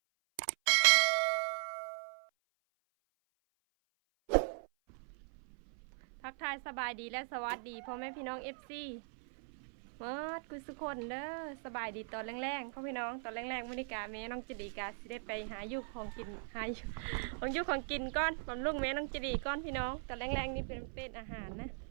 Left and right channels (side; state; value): left; silent; 52 dB below the other